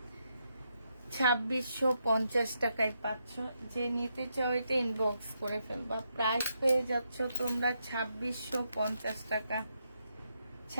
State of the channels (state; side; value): inverted; both; correlation -0.81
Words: 2650 টাকায় পাচ্ছ। যে নিতে চাও এটা ইনবক্স করে ফেলবা। প্রাইস পেয়ে যাচ্ছ তোমরা 2650 টাকা।